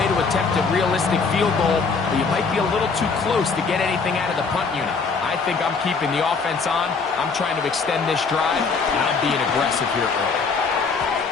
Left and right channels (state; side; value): quieter; right; 4.8 dB